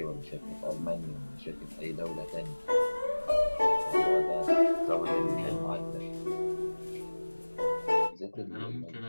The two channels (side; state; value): both; inverted; correlation -1.00